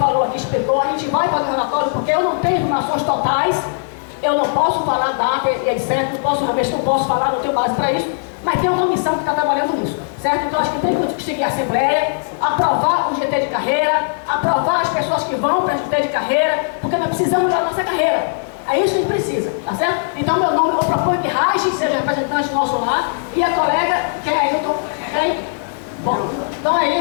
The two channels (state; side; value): silent; right; digital silence